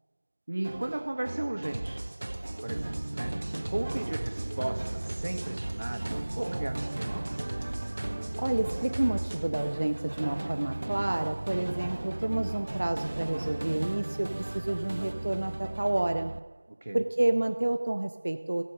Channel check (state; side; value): inverted; both; correlation -1.00